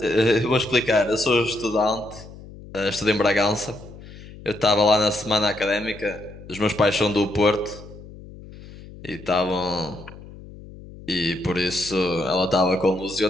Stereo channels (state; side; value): noise; left; hum, 17 dB below the sound